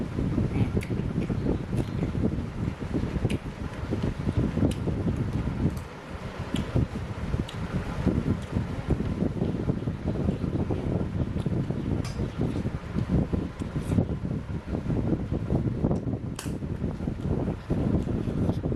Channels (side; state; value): both; identical; correlation 1.00